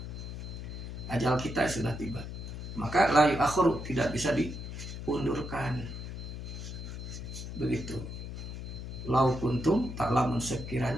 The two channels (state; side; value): noise; left; hum, 8 dB below the sound